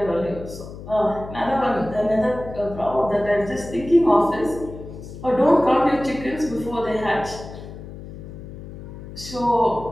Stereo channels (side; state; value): left; noise; hum, 13 dB below the sound